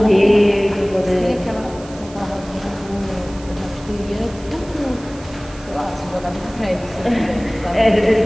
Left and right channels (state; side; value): noise; right; hiss, 20 dB below the sound